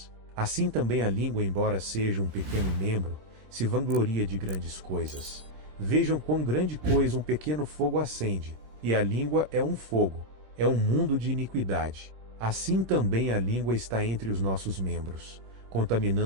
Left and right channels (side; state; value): left; late; 16 ms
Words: Assim também a língua, embora seja um pequeno membro, se vangloria de grandes coisas. Vejam quão grande coisa um pequeno fogo acende, e a língua é um fogo, é um mundo de iniquidade. Assim também a língua está entre os nossos membros,